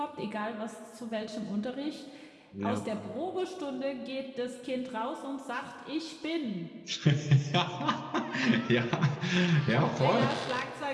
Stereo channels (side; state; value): both; identical; correlation 1.00